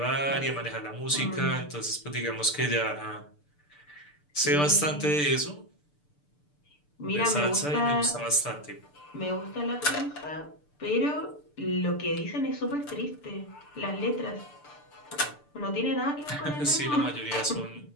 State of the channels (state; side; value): late; right; 6.8 ms